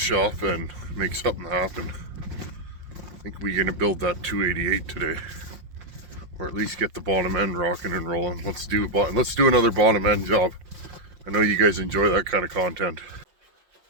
and make something happen. I think we're gonna build that 288 today, or at least get the bottom end rocking and rolling. Let's do another bottom end job. I know you guys enjoy that kind of content.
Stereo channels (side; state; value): left; late; 5.6 ms